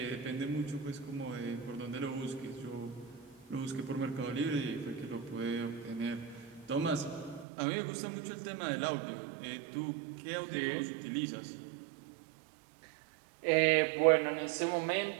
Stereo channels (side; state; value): left; drops out; at 7.5 s